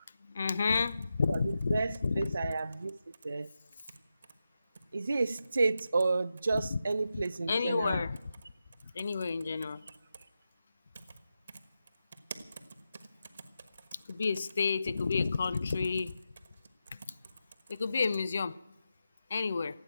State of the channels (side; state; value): both; inverted; correlation -0.89